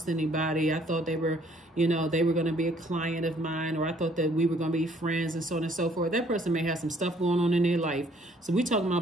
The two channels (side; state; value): both; normal; correlation 0.62